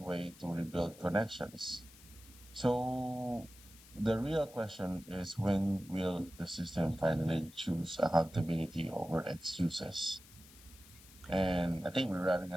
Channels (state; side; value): noise; left; hiss, 21 dB below the sound